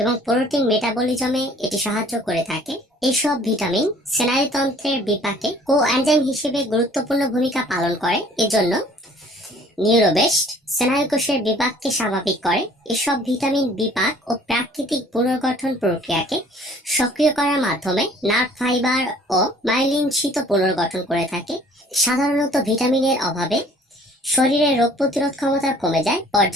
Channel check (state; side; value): normal; both; correlation 0.54